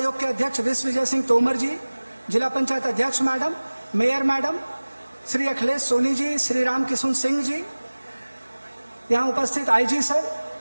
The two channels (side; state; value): both; inverted; correlation -1.00